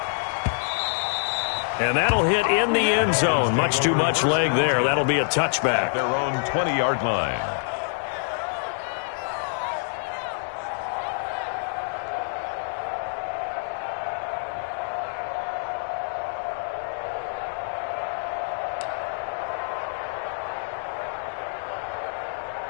And that'll hit in the end zone. Much too much leg there. That'll be a touchback. Their own 20-yard line.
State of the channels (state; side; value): silent; right; digital silence